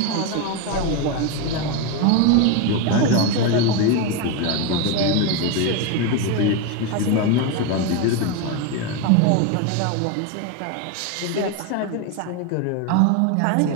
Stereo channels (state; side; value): different; both; correlation 0.03